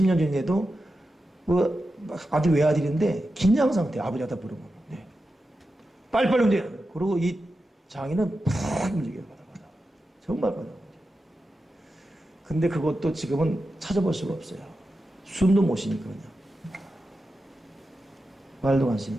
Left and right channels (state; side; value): normal; both; correlation 0.90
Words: 전에도 뭐 아주 외아들인데 긴장 상태 아버지한테 부르면 네. 빨리빨리 움직여. 그리고 이 장인은 푹 움직여요. 정말 바다. 근데 그것도 지금은 찾아볼 수가 없어요. 숨도 못 쉬니까 그냥. 말도 안 쉬니.